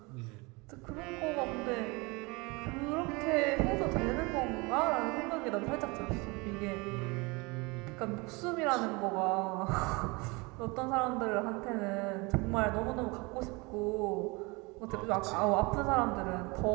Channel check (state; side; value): quieter; left; 26.4 dB